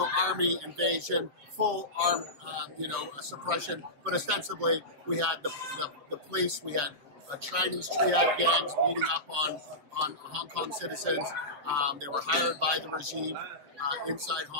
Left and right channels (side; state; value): left; late; 7.8 ms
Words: army invasion, full armed, suppression. But ostensibly, we had the police, we had Chinese triad gangs beating up on Hong Kong citizens. They were hired by the regime inside